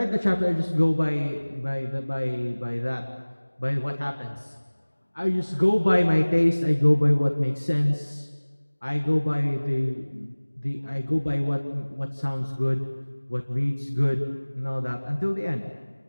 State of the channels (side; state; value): both; inverted; correlation -1.00